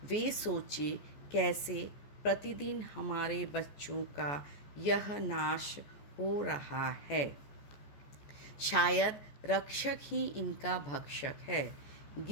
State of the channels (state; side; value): late; right; 14 ms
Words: वे सोचे, कैसे प्रतिदिन हमारे बच्चों का यह नाश हो रहा है। शायद रक्षक ही इनका भक्षक है।